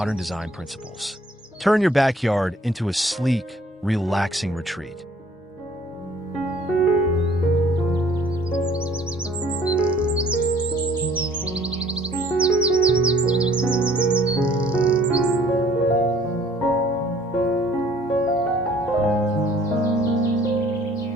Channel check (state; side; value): normal; both; correlation 0.57